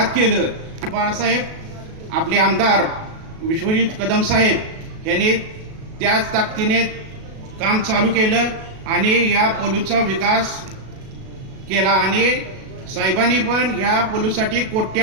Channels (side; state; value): left; late; 37 ms